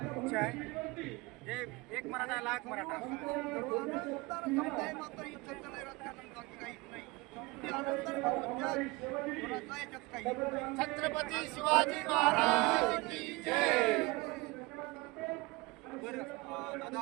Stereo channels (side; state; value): left; quieter; 23.6 dB